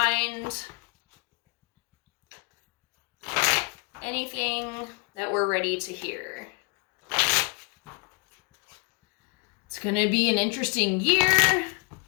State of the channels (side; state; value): right; quieter; 36.1 dB